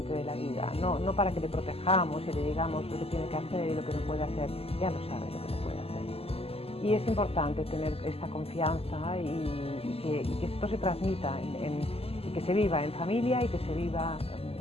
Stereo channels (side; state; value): right; late; 0.29 ms